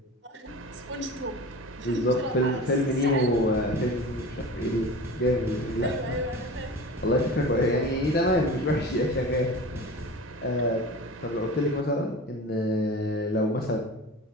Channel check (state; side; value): normal; both; correlation 0.35